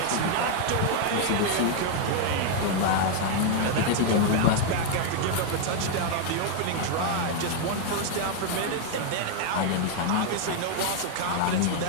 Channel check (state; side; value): different; both; correlation 0.00